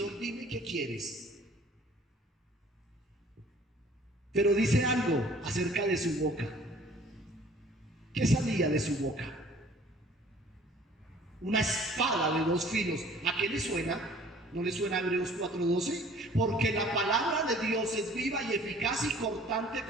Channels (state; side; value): normal; both; correlation 0.52